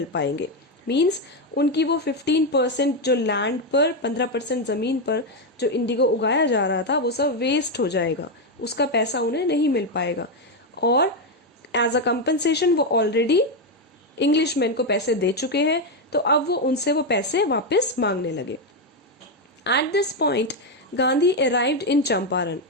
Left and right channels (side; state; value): both; normal; correlation 0.06